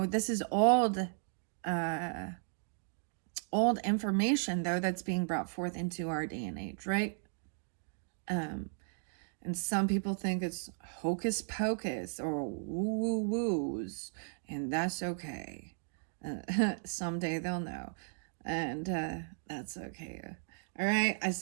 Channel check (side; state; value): left; silent; digital silence